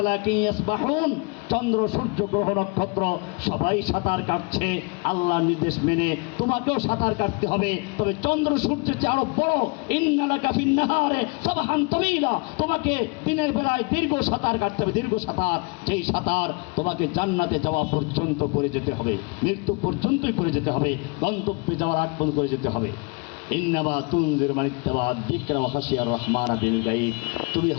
ইয়াসবাহুন। চন্দ্র সূর্য গ্রহ নক্ষত্র সবাই সাঁতার কাটছে আল্লাহর নির্দেশ মেনে, তোমাকেও সাঁতার কাটতে হবে। তবে চন্দ্র সূর্যের চেয়ে আরো বড়, ইন্নালাকা ফিন্নাহারে সাবহান তাবিলা, তোমাকে দিনের বেলায় দীর্ঘ সাঁতার কাটতে হবে, দীর্ঘ সাঁতার। যেই সাঁতার তোমাকে জান্নাতে যাওয়া পর্যন্ত করে যেতে হবে, মৃত্যু পর্যন্তই করে যেতে হবে, গন্তব্যে যাওয়ার আগ পর্যন্ত করে যেতে হবে। ইন্নামা তুনজির মান ইত্তাবা যিকরা ওয়া খাশিয়ার রহমান বিল গায়ব। তুমি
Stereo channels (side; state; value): right; quieter; 30.7 dB